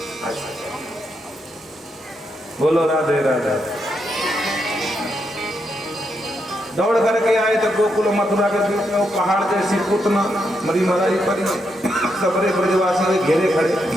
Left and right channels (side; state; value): both; normal; correlation 0.81